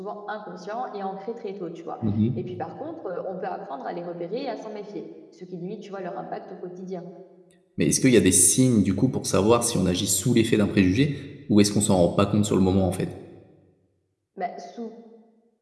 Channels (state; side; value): identical; both; correlation 1.00